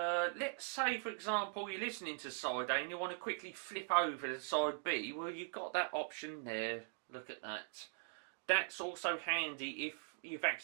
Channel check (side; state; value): left; silent; digital silence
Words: say, for example, you're listening to side A and you want to quickly flip over to side B. Well, you've got that option there. Look at that. That's also handy if you've